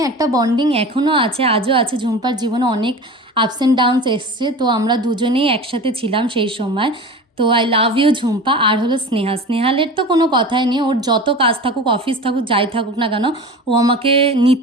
একটা বন্ডিং এখনও আছে, আজও আছে। ঝুম্পার জীবনে অনেক আপস অ্যান্ড ডাউনস এসছে, তো আমরা দুজনেই একসাথে ছিলাম সেই সময়। তো আই লাভ ইউ ঝুম্পা। আর হলো স্নেহালের তো কোনো কথাই নেই, ওর যত কাজ থাকুক, অফিস থাকুক, যাই থাকুক না কেন, ও আমাকে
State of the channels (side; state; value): both; normal; correlation 0.34